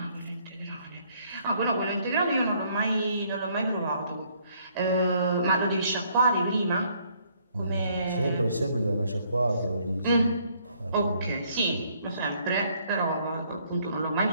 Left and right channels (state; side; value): inverted; both; correlation -0.66